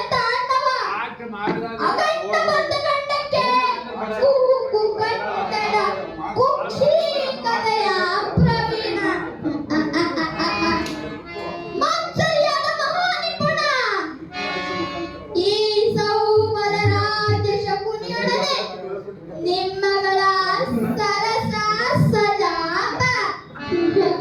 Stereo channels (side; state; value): both; identical; correlation 1.00